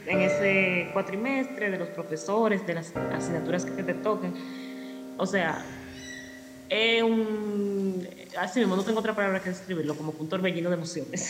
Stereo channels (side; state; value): both; identical; correlation 1.00